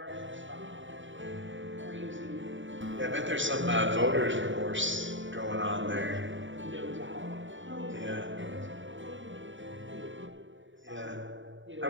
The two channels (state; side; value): late; left; 0.55 ms